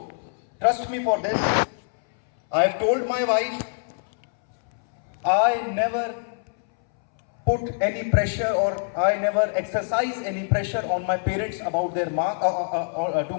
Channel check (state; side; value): silent; right; 62 dB below the other